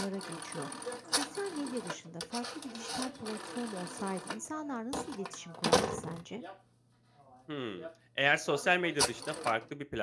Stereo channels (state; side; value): identical; both; correlation 1.00